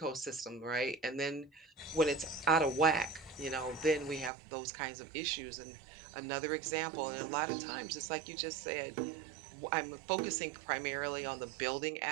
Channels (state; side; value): drops out; left; at 4.3 s